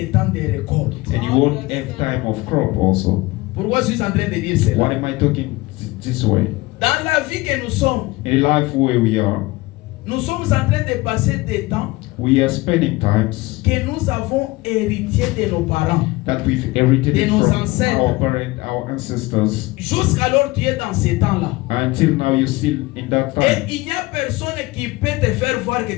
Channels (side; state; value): right; quieter; 21.0 dB